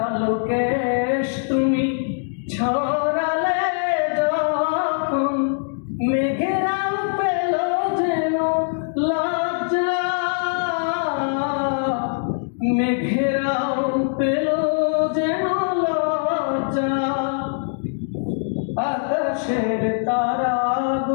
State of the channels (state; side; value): silent; right; digital silence